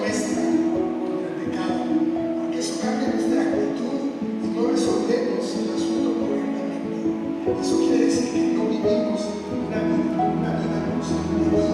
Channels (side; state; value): both; identical; correlation 1.00